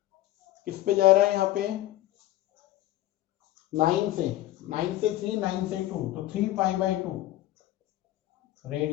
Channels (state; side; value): quieter; right; 15.0 dB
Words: किस पे जा रहा है, यहाँ पे 9 से 3, 9 से 2, तो 3 पाई बाई 2